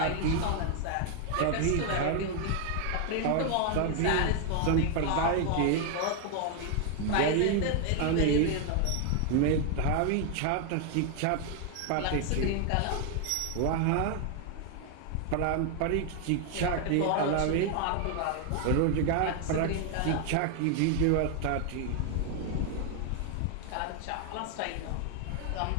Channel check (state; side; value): different; both; correlation 0.01